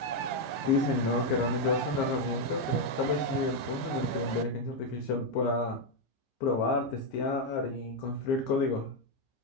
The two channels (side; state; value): right; late; 15 ms